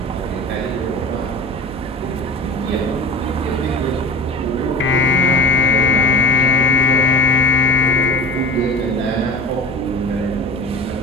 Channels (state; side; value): normal; both; correlation 0.38